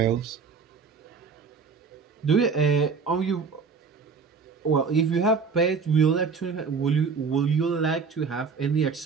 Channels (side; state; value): left; quieter; 5.3 dB